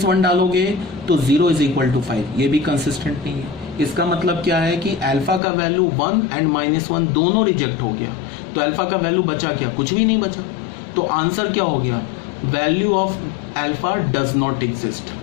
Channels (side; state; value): right; drops out; at 5.4 s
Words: डालोगे तो 0 इज इक्वल टू 5, ये भी कंसिस्टेंट नहीं है। इसका मतलब क्या है कि अल्फा का वैल्यू 1 एंड -1 दोनों रिजेक्ट हो गया, तो अल्फा का वैल्यू बचा क्या, कुछ भी नहीं बचा। तो आंसर क्या हो गया, value of alpha does not exist,